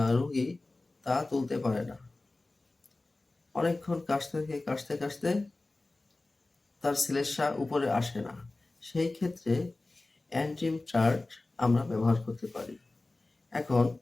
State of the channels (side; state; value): right; quieter; 3.1 dB